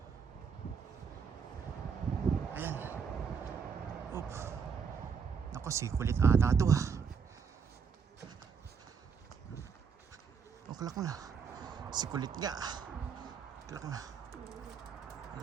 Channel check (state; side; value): quieter; left; 6.1 dB